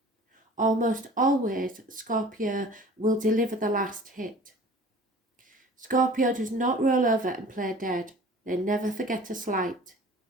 Almost always, Scorpio will deliver the last hit. Scorpio does not roll over and play dead. They never forget a slight.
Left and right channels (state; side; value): normal; both; correlation 0.45